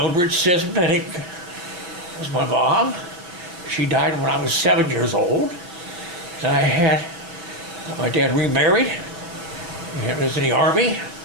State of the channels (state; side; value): late; left; 5.9 ms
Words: Sismenick was my mom. She died when I was 7 years old. And I had my dad remarried. He was in the Army.